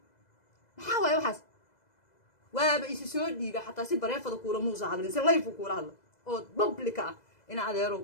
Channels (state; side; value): late; right; 2.0 ms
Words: maxaa waaye waxaas waaba isi soo dhiiga xataa si bareefada kuula muusa hadlin si live kuula hadlo oo public ah ina adeero